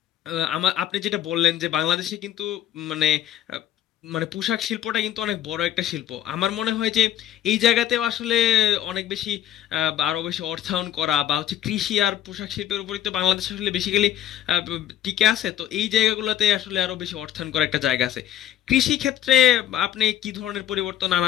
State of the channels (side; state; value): right; quieter; 11.6 dB